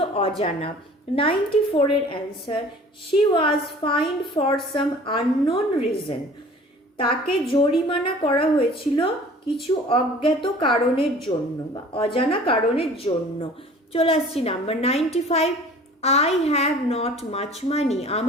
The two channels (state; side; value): normal; both; correlation 0.47